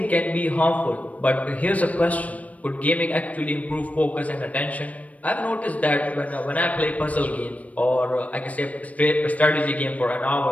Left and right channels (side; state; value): right; late; 0.068 ms